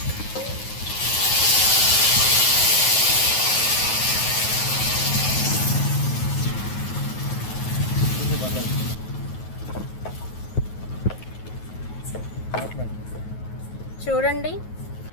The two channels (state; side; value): late; right; 9.3 ms